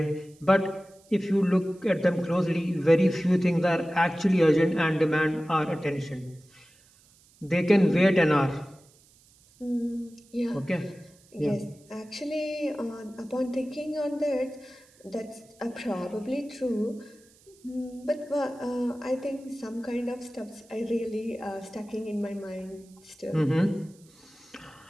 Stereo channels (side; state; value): right; noise; hiss, 29 dB below the sound